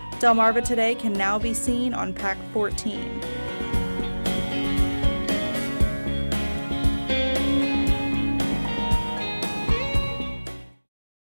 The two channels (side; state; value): both; inverted; correlation -1.00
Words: Delmarva Today can now be seen on PAC 14.